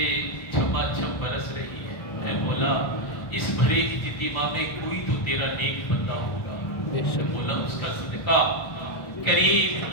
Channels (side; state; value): right; late; 1.3 ms